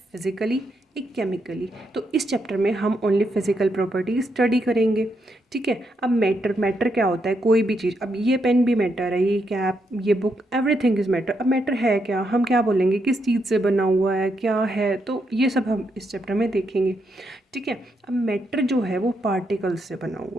फिज़िकली, एक केमिकली। तो इस चैप्टर में हम ओनली फिज़िकल प्रॉपर्टी स्टडी करेंगे, ठीक है। अब मैटर मैटर क्या होता है? कोई भी चीज़। अब ये पेन भी मैटर है, ये कैप, ये बुक, एवरीथिंग इज़ मैटर। अब मैटर है क्या, हम क्या बोलेंगे, किस चीज़ से बना हुआ है, क्या है, तो ये सब हम इस चैप्टर में देखेंगे, ठीक है। अब मैटर जो है वो पार्टिकल्स से बना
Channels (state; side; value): normal; both; correlation 0.80